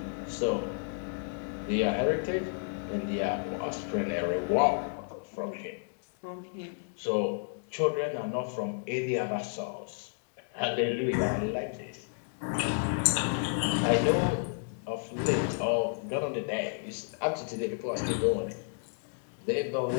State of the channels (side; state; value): right; silent; digital silence